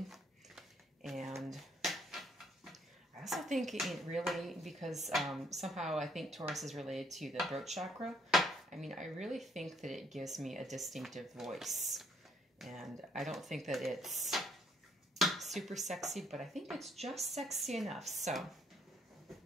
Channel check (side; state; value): both; normal; correlation 0.68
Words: And I also think it really, because somehow I think Taurus is related to the throat chakra. I mean, I really think that it gives me a distinctive voice. And I don't think that it's super sexy, but I think it's just sexy enough. So